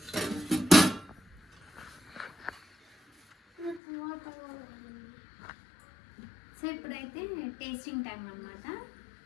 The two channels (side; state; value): right; drops out; at 3.8 s